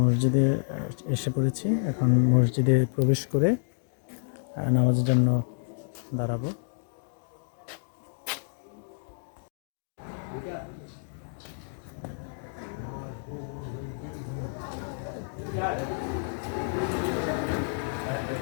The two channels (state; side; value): silent; right; digital silence